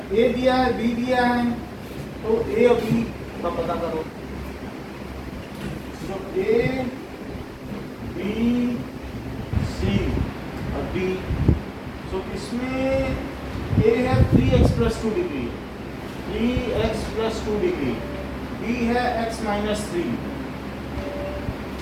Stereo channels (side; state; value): both; identical; correlation 1.00